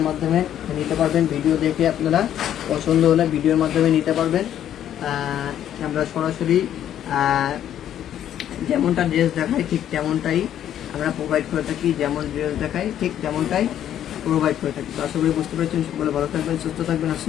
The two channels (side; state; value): right; quieter; 10.7 dB